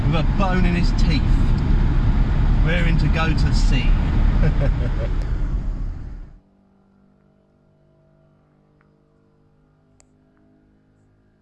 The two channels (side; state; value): both; identical; correlation 1.00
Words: with a bone in his teeth, raring to go to sea.